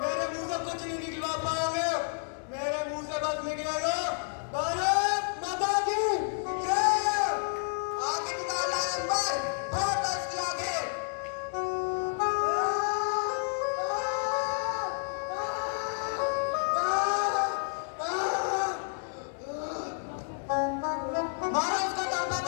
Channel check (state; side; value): silent; right; digital silence